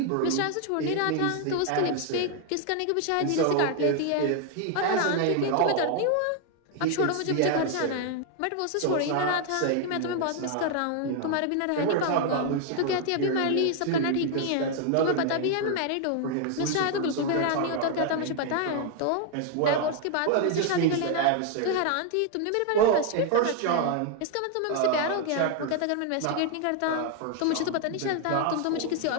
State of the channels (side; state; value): both; different; correlation 0.00